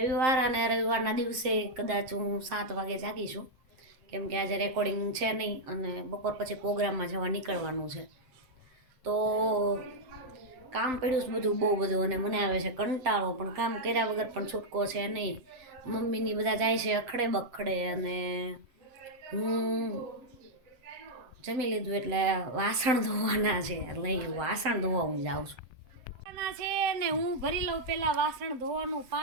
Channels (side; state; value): left; late; 7.7 ms